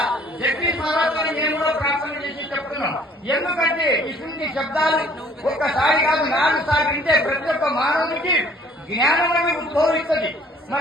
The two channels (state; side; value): normal; both; correlation 0.57